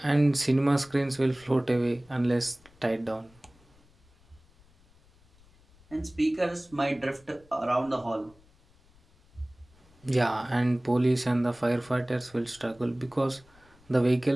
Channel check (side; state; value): left; noise; rumble, 29 dB below the sound